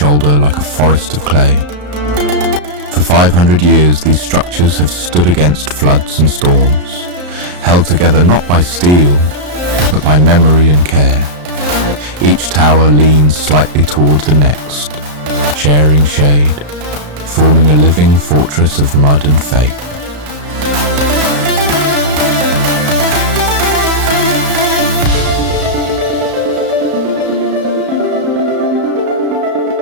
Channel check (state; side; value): late; left; 34 ms